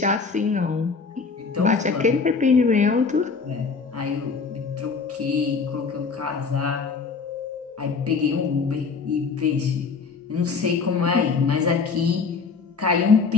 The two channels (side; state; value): right; quieter; 5.0 dB